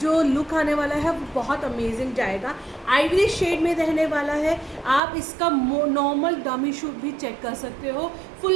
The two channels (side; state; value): left; drops out; at 5.0 s